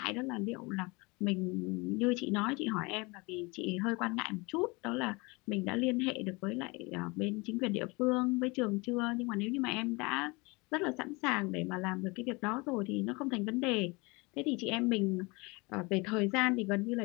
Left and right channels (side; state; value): right; quieter; 26.3 dB